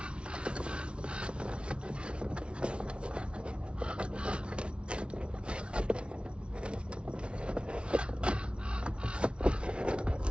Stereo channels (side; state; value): left; late; 0.058 ms